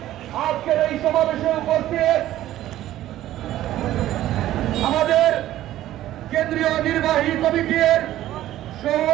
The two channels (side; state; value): left; quieter; 13.8 dB